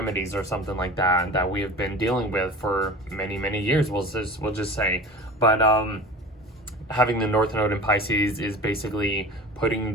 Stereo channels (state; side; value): normal; both; correlation 0.37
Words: or something like that we have been dealing with for many years, we'll just say. But having the North Node in Pisces is basically